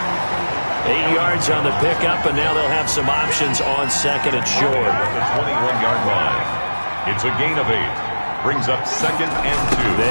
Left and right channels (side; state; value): both; inverted; correlation -1.00